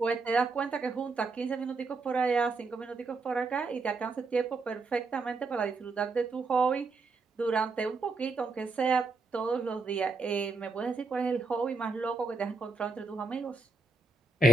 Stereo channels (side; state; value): left; quieter; 3.9 dB